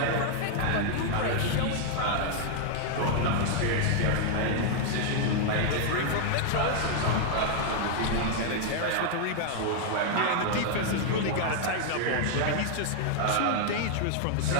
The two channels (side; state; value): both; different; correlation 0.00